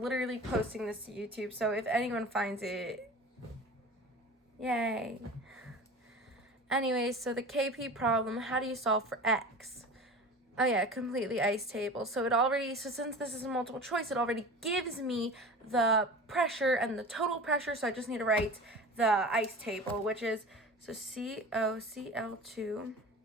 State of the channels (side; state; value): both; normal; correlation 0.35